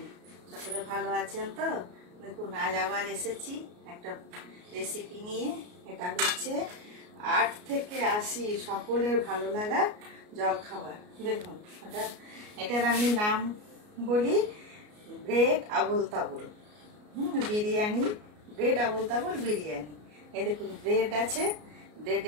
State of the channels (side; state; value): left; late; 33 ms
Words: সকলে ভালো আছেন তো? দেখুন আজ আবার এসেছি একটা রেসিপি নিয়ে। এটা হচ্ছে 8 থেকে 80 সকলের ভালো লাগা জলখাবার। দেখুন এটার আমি নাম বলি ব্রেড আবুল তাবুল। বিরিয়ানি, ব্রেড আবুল তাবুল বিরিয়ানি। এই দেখুন ব্রেড আছে,